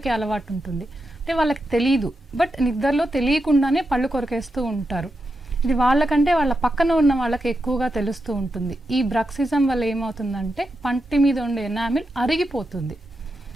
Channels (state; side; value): normal; both; correlation 0.87